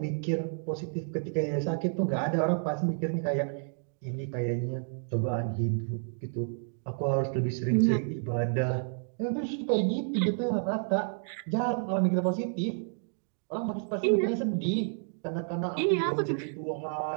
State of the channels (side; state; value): left; silent; digital silence